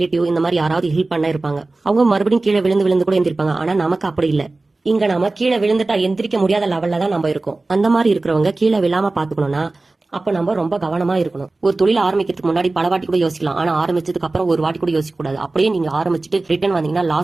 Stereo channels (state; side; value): quieter; left; 3.2 dB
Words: இந்த மாதிரி யாராவது ஹெல்ப் பண்ண இருப்பாங்க. அவங்க மறுபடியும் கீழே விழுந்து விழுந்து கூட எந்திரிப்பாங்க. ஆனா நமக்கு அப்படி இல்ல. இங்க நாம கீழே விழுந்துட்டா எந்திரிக்க முடியாத லெவல்ல தான் நம்ம இருக்கோம். அந்த மாதிரி இருக்கிறவங்க கீழே விழாம பாத்துக்கணும்னா அப்ப நம்ம ரொம்ப கவனமா இருக்கணும். ஒரு தொழில் ஆரம்பிக்கிறதுக்கு முன்னாடி பல வாட்டி கூட யோசிக்கலாம். ஆனா ஆரம்பிச்சதுக்கு அப்புறம் ஒரு வாட்டி கூட யோசிக்க கூடாது. அப்படியே நீங்க ஆரம்பிச்சுட்டு ரிட்டர்ன் வந்தீங்கன்னா